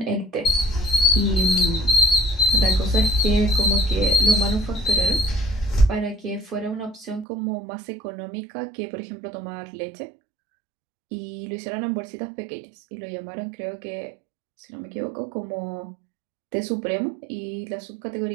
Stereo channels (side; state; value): left; drops out; at 7.2 s